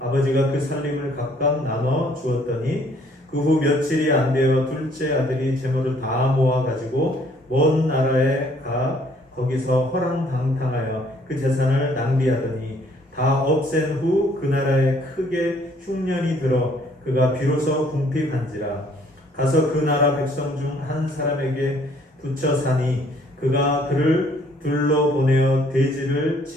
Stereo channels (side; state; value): both; normal; correlation 0.62